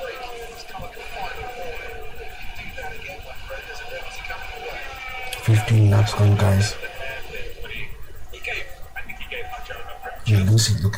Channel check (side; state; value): both; identical; correlation 1.00